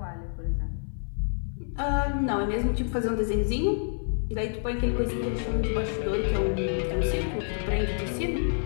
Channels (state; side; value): silent; right; 59 dB below the other